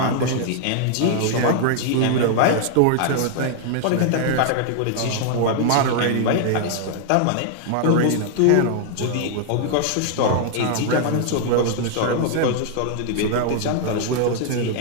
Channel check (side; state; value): both; different; correlation 0.00